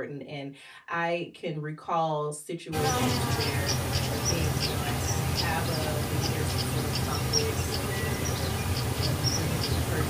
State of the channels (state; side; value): identical; both; correlation 1.00